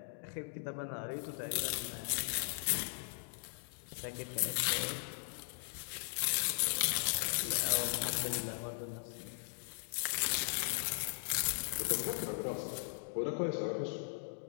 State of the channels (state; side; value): silent; right; digital silence